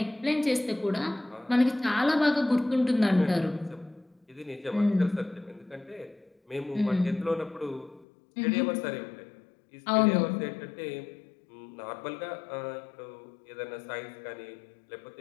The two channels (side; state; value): right; drops out; at 8.1 s